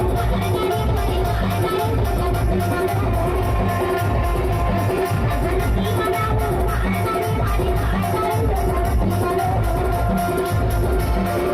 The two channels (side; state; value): both; identical; correlation 1.00